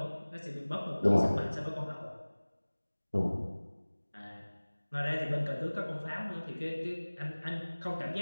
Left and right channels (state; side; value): inverted; both; correlation -1.00